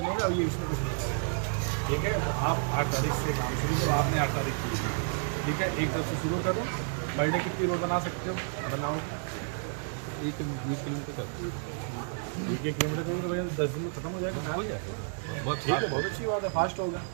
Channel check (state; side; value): silent; left; 57 dB below the other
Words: अब ये इसमें कुछ नहीं करेंगे, ठीक है। तो आप 8 तारीख से काम शुरू करो। आपने 8 तारीख की, ठीक है। एक तरफ से शुरू करो। पर डे कितनी रोड बना सकते हो? बनाओ 1 किलोमीटर करोगे तो भैया 10 दिन में खत्म हो जाएगा। कहाँ लिया, ठीक है, बहुत अच्छी बात है, फास्ट होगा।